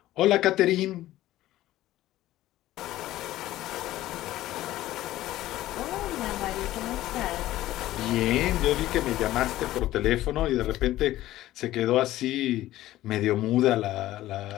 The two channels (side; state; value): right; quieter; 15.1 dB